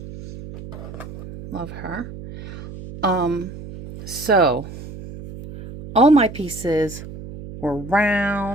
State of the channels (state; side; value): noise; right; hum, 12 dB below the sound